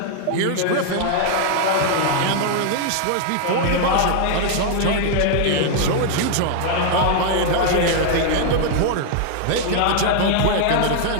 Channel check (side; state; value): both; different; correlation 0.00